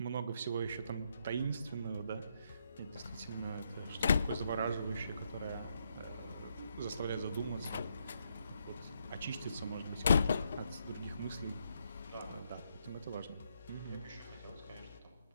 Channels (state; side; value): inverted; both; correlation -0.77